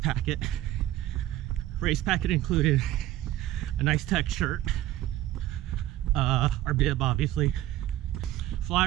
Race packet included a nice tech shirt, our bib obviously,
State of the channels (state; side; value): quieter; left; 14.6 dB